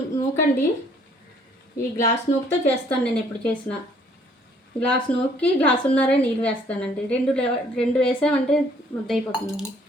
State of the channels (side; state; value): both; normal; correlation 0.62